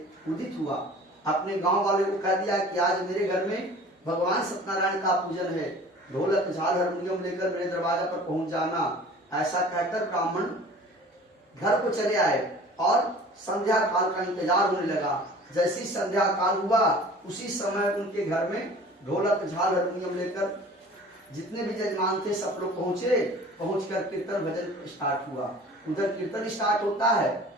उदित हुआ। अपने गांव वाले को कह दिया कि आज मेरे घर में भगवान सत्यनारायण का पूजन है, ढोलक झाल हारमोनियम लेकर मेरे दरवाजा पर पहुंच जाना। ऐसा कहकर ब्राह्मण घर को चले आए और संध्या काल का इंतजार होने लगा। जैसी संध्या काल हुआ उसी समय उनके घर में ढोलक झाल हारमोनियम लेकर जितने भी जजमान थे सब लोग पहुंचे। पहुंचकर कीर्तन भजन स्टार्ट हुआ। उधर कीर्तन स्टार्ट होता है,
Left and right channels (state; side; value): normal; both; correlation 0.45